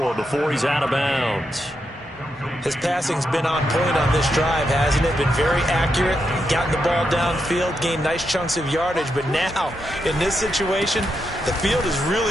before he's out of bounds. His passing's been on point on this drive, hasn't it? Been very accurate, gotten the ball downfield, gained nice chunks of yardage. But now, in this situation, the field is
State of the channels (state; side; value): normal; both; correlation 0.84